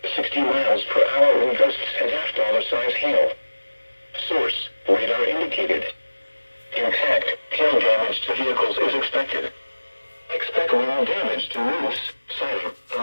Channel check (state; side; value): inverted; both; correlation -1.00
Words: 60 miles per hour wind gusts and half-dollar-size hail. Source, radar indicated. Impact, hail damage to vehicles is expected. Expect wind damage to roofs, siding,